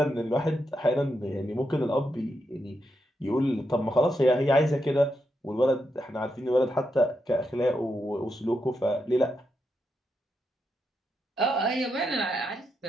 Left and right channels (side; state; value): both; normal; correlation 0.84